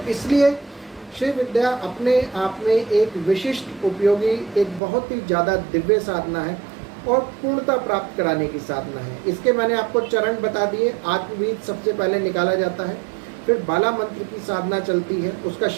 इसलिए श्री विद्या अपने आप में एक विशिष्ट, उपयोगी, एक बहुत ही ज़्यादा दिव्य साधना है और पूर्णता प्राप्त कराने की साधना है। इसके मैंने आपको चरण बता दिए। आत्मबीज सबसे पहले निकाला जाता है, फिर बाला मंत्र की साधना चलती है, उसका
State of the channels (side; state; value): left; drops out; at 4.8 s